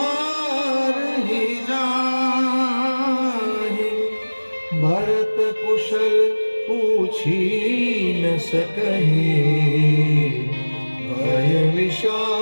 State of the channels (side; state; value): both; inverted; correlation -1.00